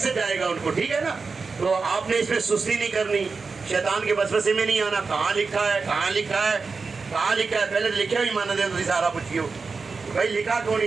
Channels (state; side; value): quieter; left; 4.6 dB